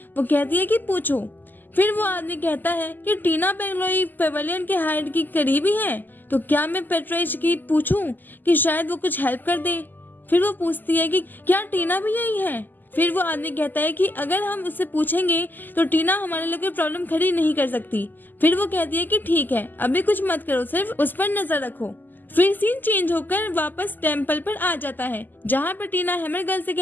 वो कहती है कि पूछो। फिर वो आदमी कहता है कि टीना पेंगलोई पेवेलियन के हाइड की करीबी है, तो क्या मैं पेट्रेज की पूछूं कि शायद वो कुछ हेल्प कर दे। फिर वो पूछती है कि क्या टीना भी यही है। फिर वो आदमी कहता है कि अगर हम उससे पूछेंगे तो टीना हमारे लिए कोई प्रॉब्लम खड़ी नहीं कर सकती। फिर वो कहती है कि ठीक है, अभी कुछ मत करो, सिर्फ उस पर नजर रखो। फिर सीन चेंज होकर वापस टेम्पल पर आ जाता है जहाँ पर टीना हैमर गर्ल से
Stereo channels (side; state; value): right; late; 0.088 ms